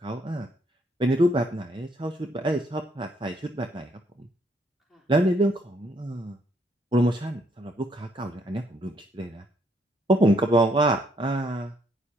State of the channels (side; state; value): both; normal; correlation 0.70